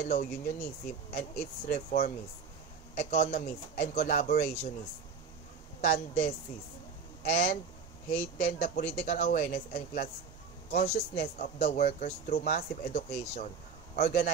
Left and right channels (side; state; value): left; quieter; 5.6 dB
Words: unionism and its reformist, economist, and collaborationist tendencies, and heighten the political awareness and class consciousness of the workers through massive education,